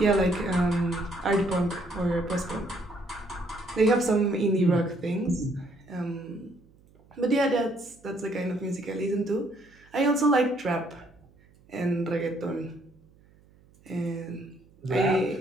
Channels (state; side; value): noise; right; hum, 29 dB below the sound